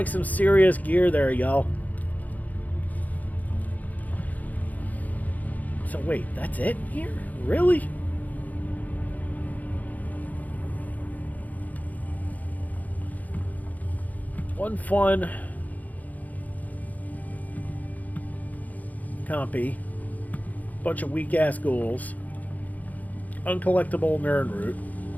some serious gear there, y'all. So wait, that's it here? Really? One fun compy, bunch of weak-ass ghouls, uncollectible nerd root,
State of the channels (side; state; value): right; late; 0.079 ms